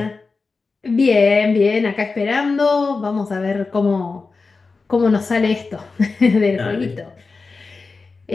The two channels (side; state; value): right; quieter; 4.2 dB